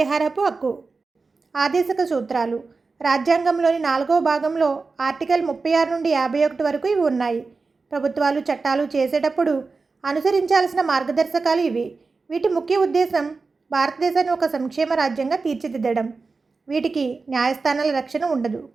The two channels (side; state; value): left; quieter; 4.2 dB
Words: హక్కు. ఆదేశక సూత్రాలు. రాజ్యాంగంలోని 4వ భాగంలో ఆర్టికల్ 36 నుండి 51 వరకు ఇవి ఉన్నాయి. ప్రభుత్వాలు చట్టాలు చేసేటప్పుడు అనుసరించాల్సిన మార్గదర్శకాలు ఇవి. వీటి ముఖ్య ఉద్దేశం భారతదేశాన్ని ఒక సంక్షేమ రాజ్యంగా తీర్చిదిద్దడం. వీటికి న్యాయస్థానాల రక్షణ ఉండదు,